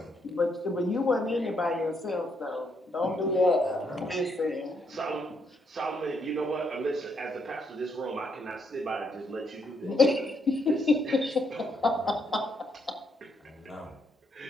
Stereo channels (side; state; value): both; normal; correlation 0.75